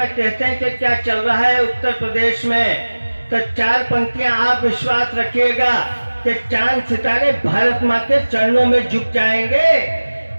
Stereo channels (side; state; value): both; inverted; correlation -1.00